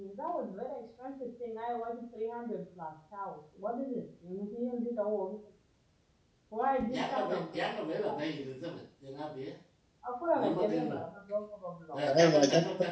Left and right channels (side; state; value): both; identical; correlation 1.00